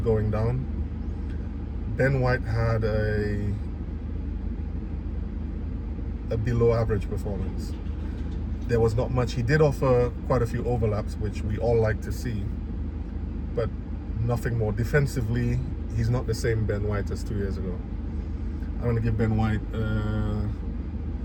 down. Ben White had a below average performance. There was not much. He did offer quite a few overlaps, which we all like to see, but nothing more. Defensively, he's not the same Ben White as 2 years ago. I'm going to give Ben White, oh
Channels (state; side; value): identical; both; correlation 1.00